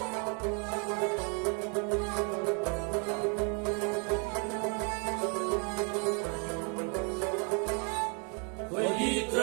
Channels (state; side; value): quieter; left; 37.5 dB